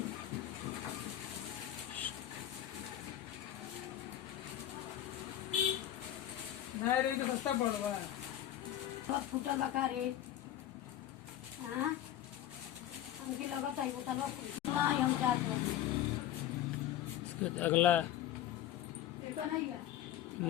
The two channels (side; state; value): right; quieter; 12.1 dB